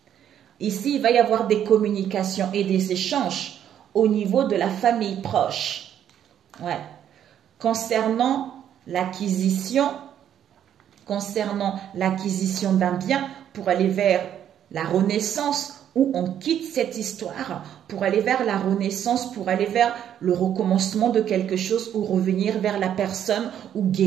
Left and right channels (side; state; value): left; quieter; 10.0 dB